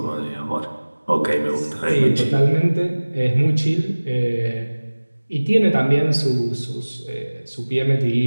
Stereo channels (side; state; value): both; inverted; correlation -1.00